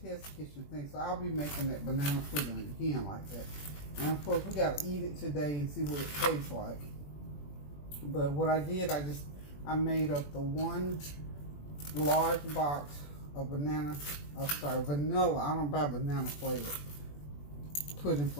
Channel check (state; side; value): late; right; 21 ms